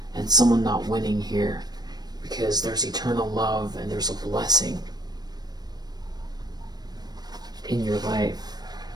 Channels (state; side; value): late; left; 0.19 ms